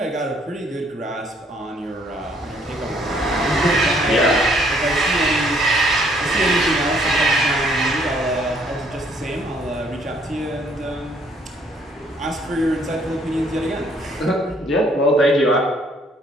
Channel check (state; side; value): normal; both; correlation 0.65